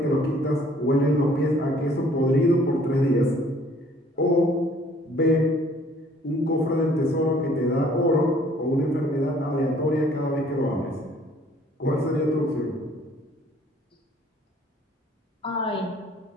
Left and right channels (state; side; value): normal; both; correlation 0.58